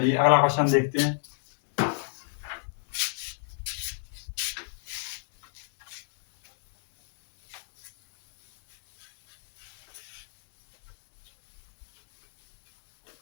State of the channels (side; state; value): right; silent; digital silence